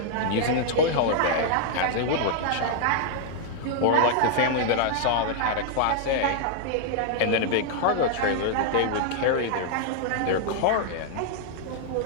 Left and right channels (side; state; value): both; different; correlation -0.01